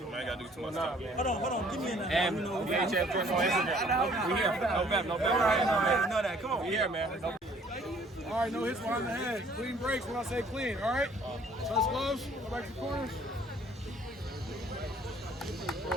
I gotta do too much stuff. Hold on. Give me a number. And VHF on Instagram. We here. No bet. I know that. Come on. We here, man. All right, no hits behind the head. Clean breaks when I say clean, all right? Touch gloves, go back to the corners.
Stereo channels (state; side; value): normal; both; correlation 0.58